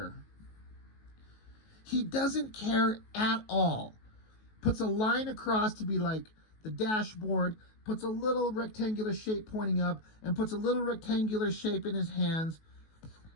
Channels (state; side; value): late; right; 19 ms